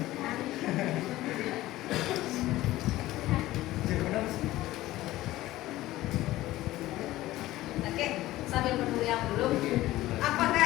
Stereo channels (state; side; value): quieter; right; 16.4 dB